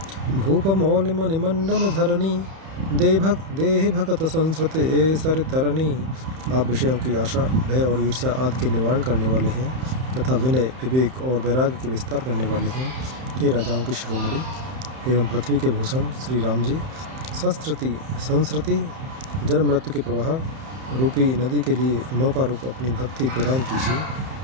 भूप मौल मणिमंडन धरणी देहि भगत संस्कृत ए सर तरणी। आप विषयों की आशा भय और ईर्ष्या आदि के निवारण करने वाले हैं तथा विनय विवेक और वैराग्य के विस्तार करने वाले हैं। हे राजाओं की शिरोमणि एवं पृथ्वी के भूषण श्री राम जी, संस्कृति जन्म मृत्यु के प्रवाह रूपी नदी के लिए नौका रूप अपनी भक्ति प्रदान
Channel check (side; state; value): left; late; 31 ms